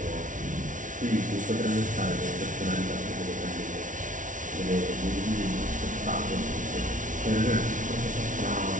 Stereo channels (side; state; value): left; late; 0.37 ms